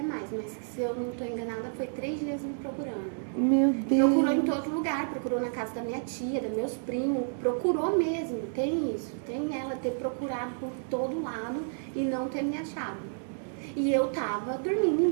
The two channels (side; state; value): left; silent; digital silence